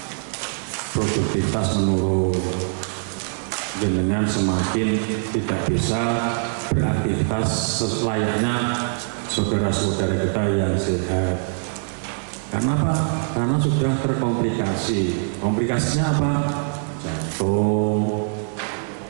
Produktivitas menurun, dengan semakin tidak bisa beraktivitas selayaknya saudara-saudara kita yang sehat. Karena apa? Karena sudah terkomplikasi. Komplikasinya apa? Jantung,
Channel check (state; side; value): silent; left; 64 dB below the other